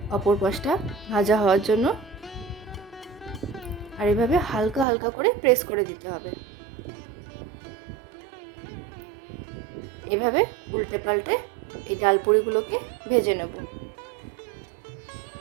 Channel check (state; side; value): drops out; left; at 4.9 s